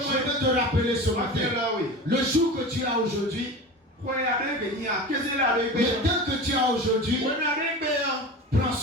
veux te rappeler ce matin, le jour que tu as aujourd'hui, le temps que tu as aujourd'hui, prends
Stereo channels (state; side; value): normal; both; correlation 0.31